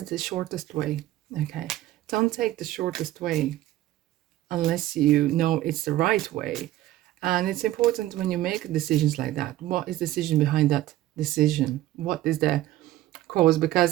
the shortest way. Okay, don't take the shortest way unless you know it's the right way. And it's important when you make decisions like that. What is the decision behind that decision? What is the cause?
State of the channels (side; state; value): left; quieter; 15.0 dB